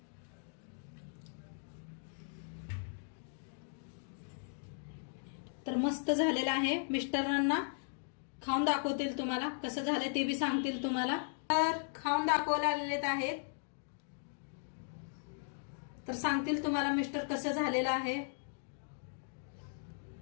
तर मस्त झालेला आहे. मिस्टरांना खाऊन दाखवतील तुम्हाला कसं झालंय ते बी सांगतील तुम्हाला. तर खाऊन दाखवायला आलेले आहेत. तर सांगतील तुम्हाला मिस्टर कसं झालेलं आहे.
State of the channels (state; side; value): silent; right; digital silence